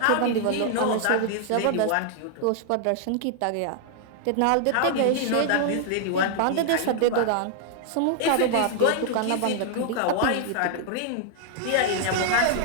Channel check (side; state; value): both; different; correlation 0.00